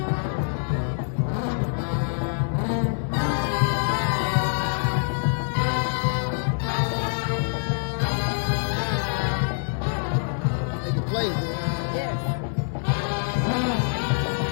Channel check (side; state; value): right; silent; digital silence